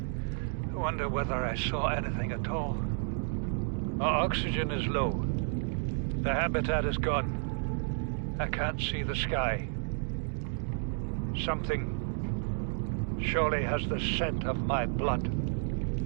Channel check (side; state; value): left; silent; 57 dB below the other